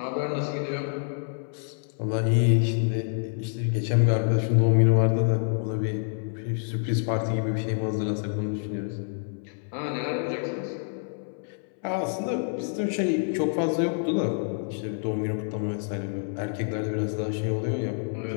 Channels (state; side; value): silent; right; 60 dB below the other